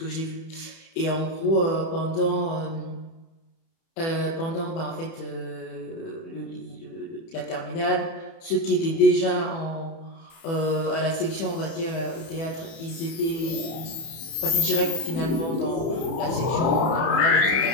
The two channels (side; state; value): right; late; 30 ms